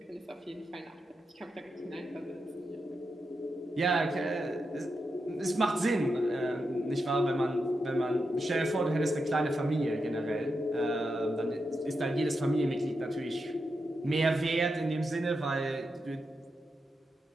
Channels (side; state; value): both; normal; correlation 0.87